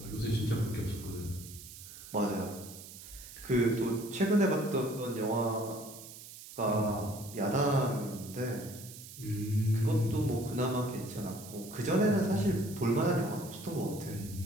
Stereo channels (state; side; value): noise; right; hiss, 15 dB below the sound